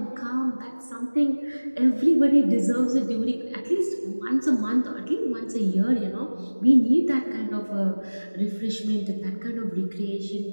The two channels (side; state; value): both; inverted; correlation -1.00